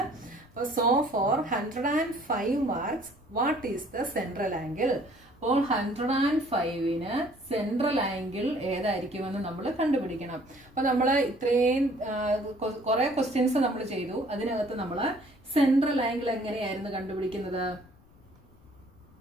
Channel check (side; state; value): left; noise; rumble, 28 dB below the sound